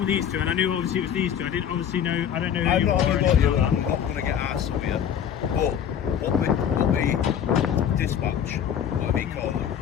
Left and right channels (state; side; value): quieter; right; 8.9 dB